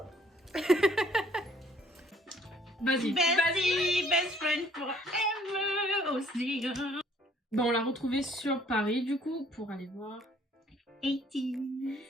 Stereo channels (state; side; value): normal; both; correlation 0.60